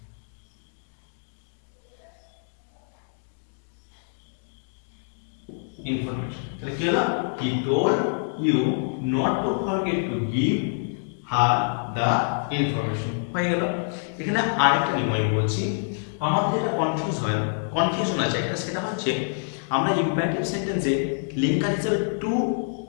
ইনফরমেশন তাহলে কি হলো, he told you not to forget to give her the information, হয়ে গেল। এখানে আরেকটা নিয়ম আমি বলছি, আমাদের যেটা কনফিউশন আছে একটা, সেটা হচ্ছে আমরা ইম্পারেটিভ সেন্টেন্সে লিঙ্কার হিসেবে টু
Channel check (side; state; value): right; silent; digital silence